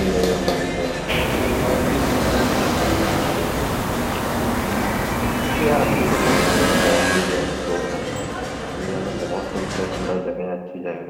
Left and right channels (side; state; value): both; identical; correlation 1.00